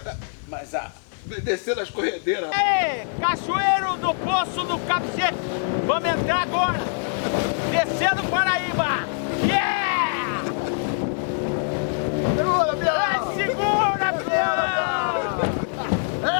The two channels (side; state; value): right; silent; digital silence